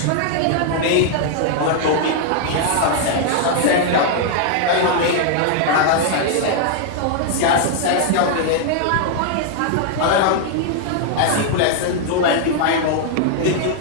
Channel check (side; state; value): both; different; correlation 0.00